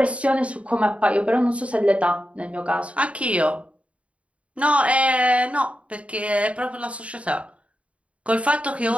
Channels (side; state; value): left; late; 0.063 ms